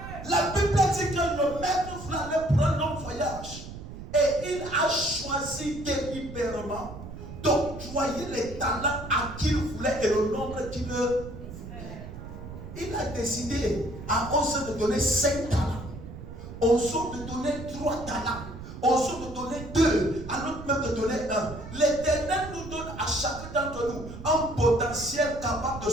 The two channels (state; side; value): noise; right; rumble, 12 dB below the sound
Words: La Bible dit que le maître voulait aller prendre un voyage. Et il a choisi délibérément d'octroyer les talents à qui il voulait et le nombre qu'il veut. Il a décidé à Ose de donner 5 talents, Ose de donner 3 talents, Ose de donner 2, à l'autre même de donner 1. L'Éternel nous donne à chacun d'entre nous un potentiel capable de